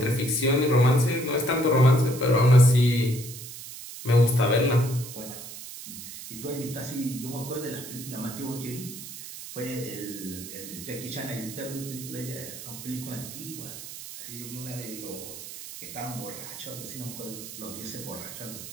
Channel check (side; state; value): right; noise; hiss, 12 dB below the sound